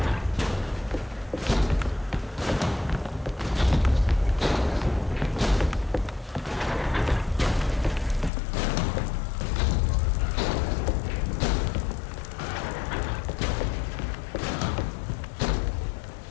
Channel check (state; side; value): drops out; right; at 8.3 s